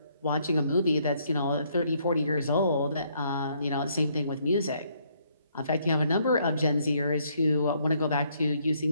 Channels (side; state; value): both; inverted; correlation -0.70